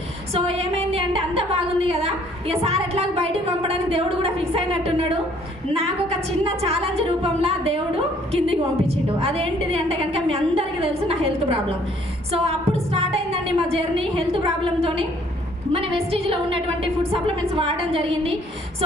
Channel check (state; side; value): normal; both; correlation 0.61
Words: సో ఏమైంది అంటే అంత బాగుంది కదా, ఇక సార్ ఎట్లా బయటకు పంపడానికి దేవుడు కూడా ఫిక్స్ అయినట్టున్నాడు. నాకు ఒక చిన్న ఛాలెంజ్ రూపంలో దేవుడు కిందికి పంపించిండు. అదేంటిది అంటే కనుక మీ అందరికీ తెలుసు, నా హెల్త్ ప్రాబ్లం. సో అప్పుడు స్టార్ట్ అయిందండి మా జర్నీ హెల్త్ ప్రాబ్లంతోని. మన వెస్టీజ్లో ఉన్నటువంటి ఫుడ్ సప్లిమెంట్స్ వాడడం జరిగింది. సో